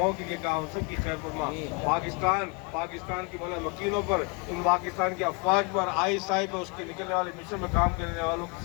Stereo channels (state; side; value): quieter; right; 30.7 dB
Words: کے لیے کہا وہ سب کی خیر فرما، پاکستان کی مولا مکینوں پر، ان پاکستان کے افواج پر، ISI پر، اس کے نکلنے والے مشن میں کام کرنے والوں کی